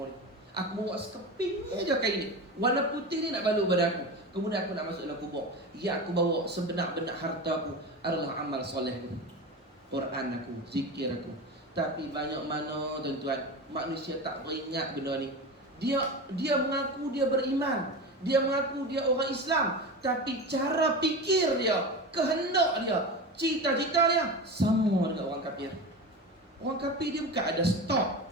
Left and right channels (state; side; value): normal; both; correlation 0.27